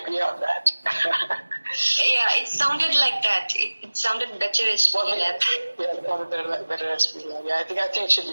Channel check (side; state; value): both; inverted; correlation -1.00